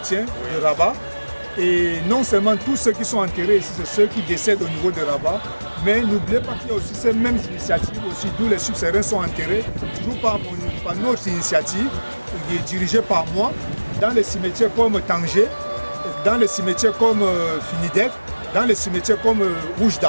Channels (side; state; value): both; inverted; correlation -1.00